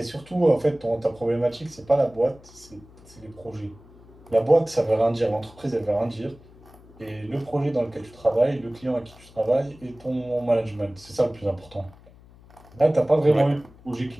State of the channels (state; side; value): noise; left; hum, 24 dB below the sound